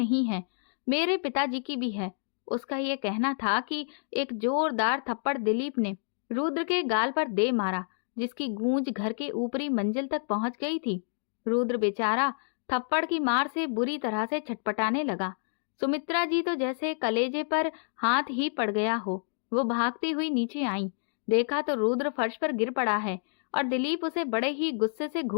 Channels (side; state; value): right; silent; digital silence